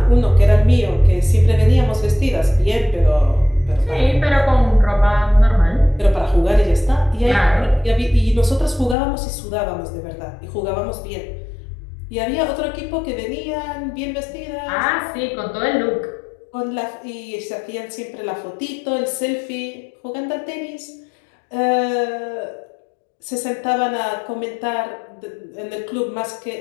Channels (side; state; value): right; drops out; at 9.0 s